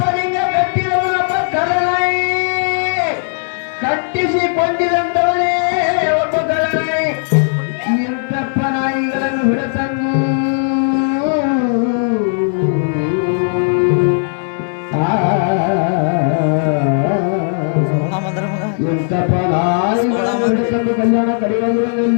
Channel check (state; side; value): silent; right; digital silence